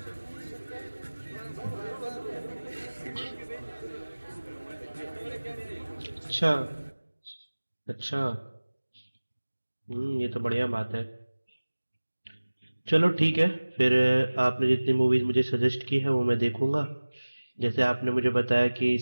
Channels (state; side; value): inverted; both; correlation -1.00